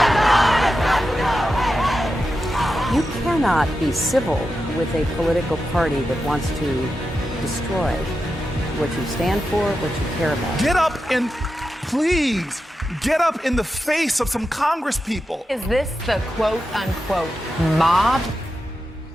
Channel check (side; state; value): both; normal; correlation 0.90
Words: You cannot be civil with a political party that wants to destroy what you stand for, what you care about. Get up and please get up in the face of some Congress people. Is this the quote unquote mob?